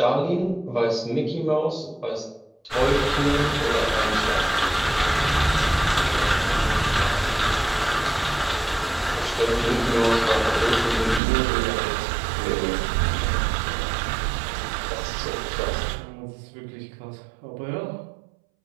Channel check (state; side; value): drops out; left; at 11.2 s